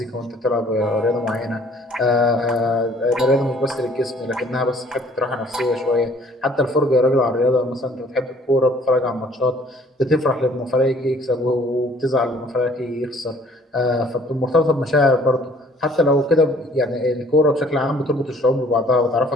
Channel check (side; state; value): both; normal; correlation 0.57